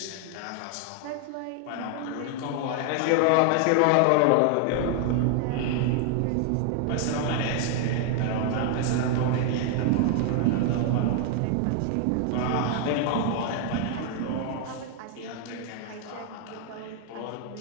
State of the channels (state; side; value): different; both; correlation 0.00